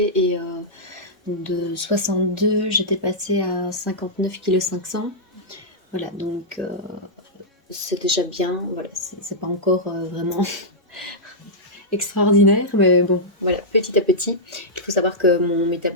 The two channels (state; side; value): normal; both; correlation -0.10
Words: et de 62 j'étais passée à 59,5 kg. Voilà, donc c'est déjà bien, voilà, c'est pas encore vraiment extraordinaire, mais bon, voilà, petit à petit. Il faut savoir que mon